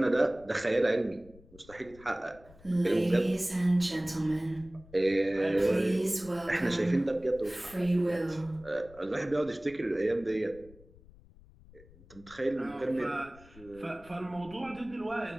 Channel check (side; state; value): left; noise; rumble, 23 dB below the sound